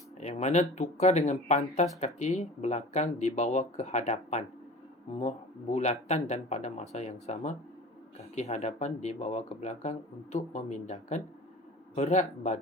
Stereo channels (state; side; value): normal; both; correlation 0.39